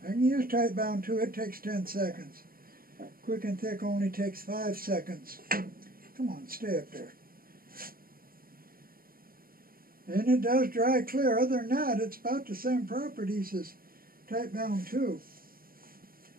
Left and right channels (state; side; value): late; left; 0.42 ms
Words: I can use tight bound 2, it takes 10 seconds. Quick and thick only takes 5 seconds. Come on, stay up there. And it does dry clear. Other than that, it's about the same properties as Type Bound 2.